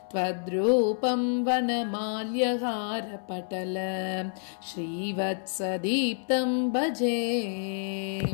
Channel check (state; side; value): silent; right; 59 dB below the other